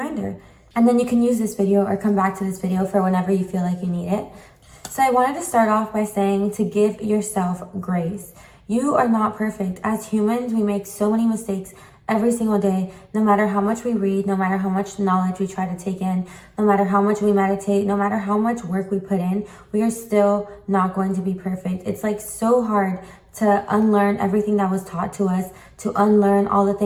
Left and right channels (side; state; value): both; identical; correlation 1.00